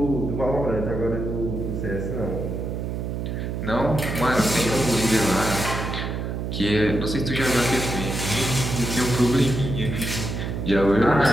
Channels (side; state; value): right; noise; hum, 4 dB below the sound